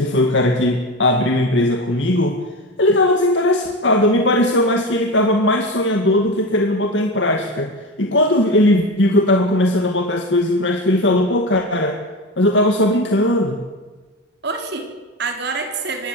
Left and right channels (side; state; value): both; normal; correlation 0.23